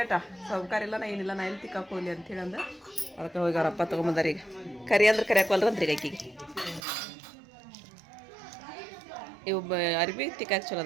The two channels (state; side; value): drops out; left; at 6.8 s